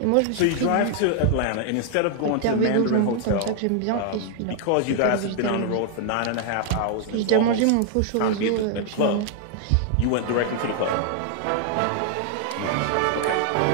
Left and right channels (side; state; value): both; different; correlation 0.00